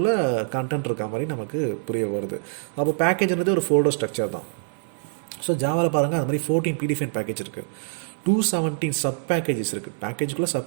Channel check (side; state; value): left; silent; 62 dB below the other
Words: கண்டென்ட் இருக்க மாதிரி நமக்கு புரிய வருது. அப்போ பேக்கேஜ்ன்றது ஒரு ஃபோல்டர் ஸ்ட்ரக்சர் தான். ஸோ ஜாவாவில் பாருங்கள், அது மாதிரி 14 ப்ரீடிஃபைன் பேக்கேஜ் இருக்குது, 217 சப் பேக்கேஜஸ் இருக்குது. பேக்கேஜுக்குள்ளே சப்